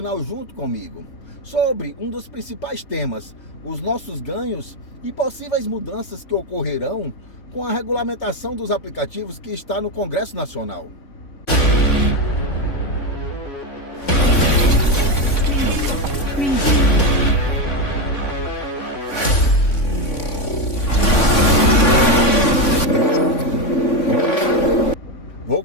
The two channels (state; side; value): late; right; 3.5 ms